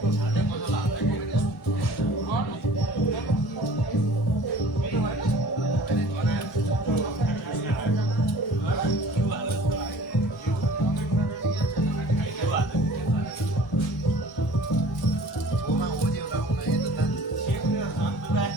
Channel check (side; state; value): both; normal; correlation 0.47